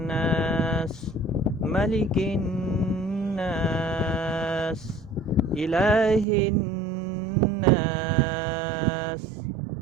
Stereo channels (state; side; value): drops out; left; at 6.2 s